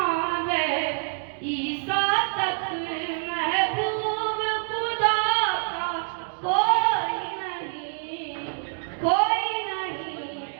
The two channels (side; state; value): left; silent; digital silence